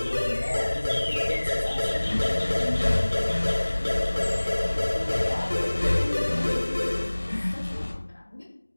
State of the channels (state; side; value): inverted; both; correlation -1.00